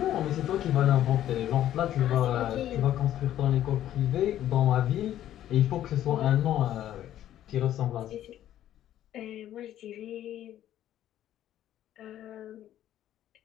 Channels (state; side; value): quieter; right; 12.1 dB